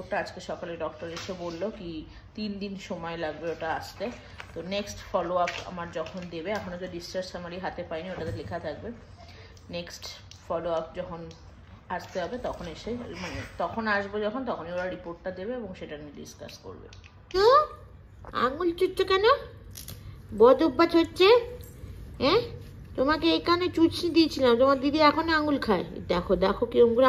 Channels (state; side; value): identical; both; correlation 1.00